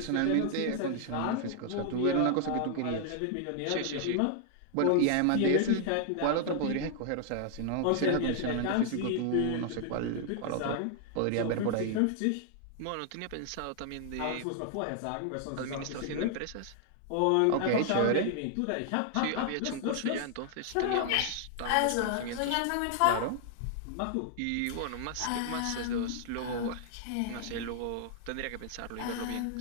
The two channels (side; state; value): both; different; correlation -0.01